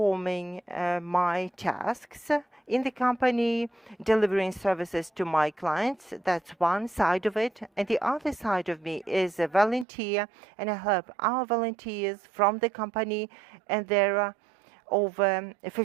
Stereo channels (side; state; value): left; drops out; at 9.9 s